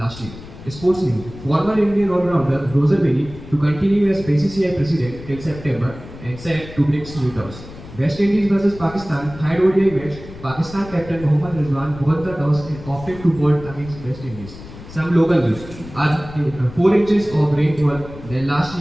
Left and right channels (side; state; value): left; noise; rumble, 15 dB below the sound